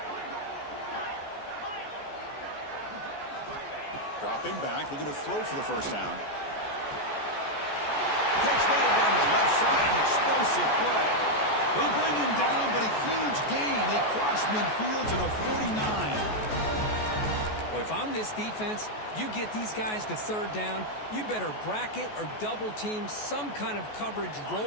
Dropping back, looking to throw for the 1st down. Catch made down the left side, an explosive play. They bring him down, but a huge gain. They cross midfield to the 49. Well, if I'm this defense, you get these guys to 3rd down, you better bracket or double team some kind of coverage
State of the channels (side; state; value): right; late; 14 ms